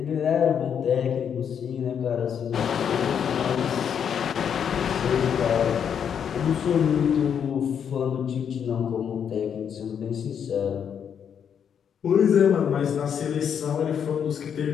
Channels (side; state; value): right; quieter; 8.0 dB